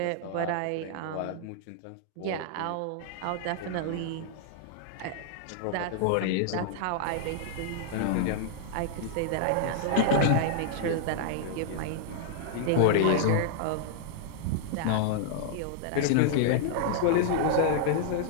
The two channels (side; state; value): both; different; correlation -0.01